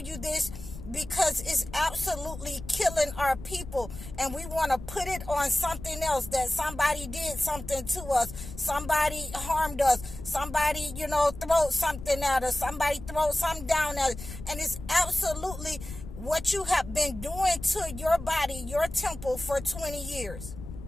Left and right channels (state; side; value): noise; left; rumble, 12 dB below the sound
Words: you this because it's absolutely killing our people, and we want to put it on something else, that somebody did something to us, somebody harmed us, somebody, throw something at us, somebody throw something down at us, and it's absolutely what you have been doing to your body, your temple, for 20 years.